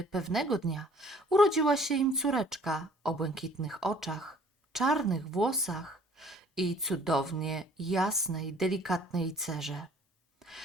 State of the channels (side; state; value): both; normal; correlation 0.55